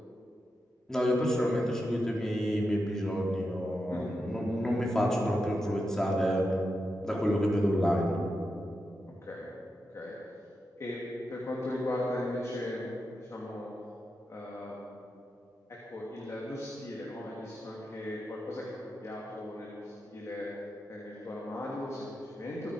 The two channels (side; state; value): both; normal; correlation 0.88